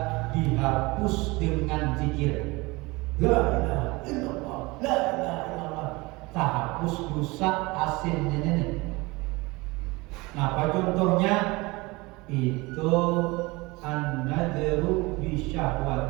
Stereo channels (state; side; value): quieter; left; 23.5 dB